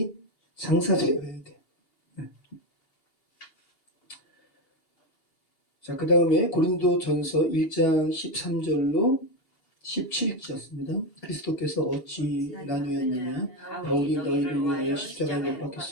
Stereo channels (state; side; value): late; right; 2.8 ms